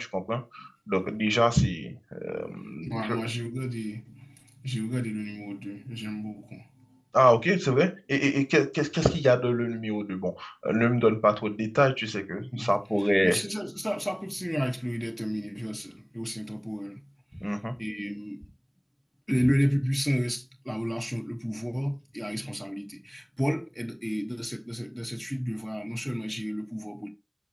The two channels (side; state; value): both; identical; correlation 1.00